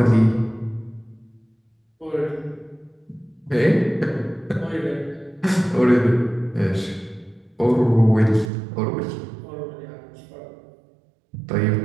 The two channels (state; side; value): drops out; left; at 8.5 s